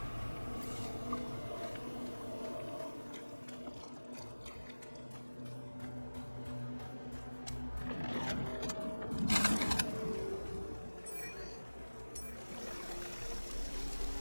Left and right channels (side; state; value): both; inverted; correlation -1.00